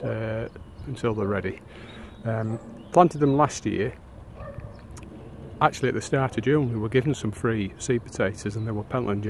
until they're ready. Planted them last year. Actually at the start of June we were given some free seed potatoes, and they were Pentland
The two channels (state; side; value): identical; both; correlation 1.00